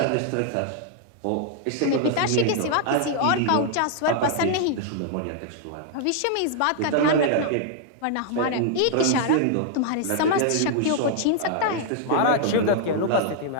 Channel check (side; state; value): both; different; correlation 0.00